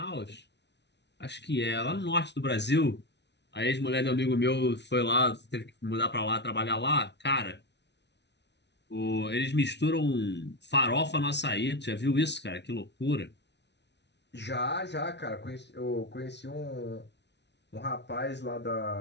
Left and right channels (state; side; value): late; right; 0.50 ms